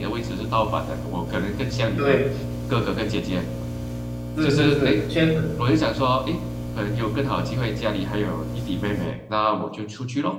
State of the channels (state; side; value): identical; both; correlation 1.00